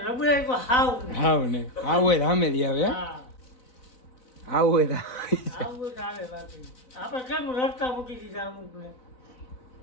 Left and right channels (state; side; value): late; right; 4.0 ms